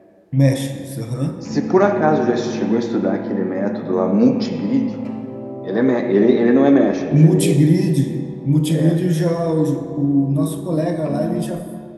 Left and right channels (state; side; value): identical; both; correlation 1.00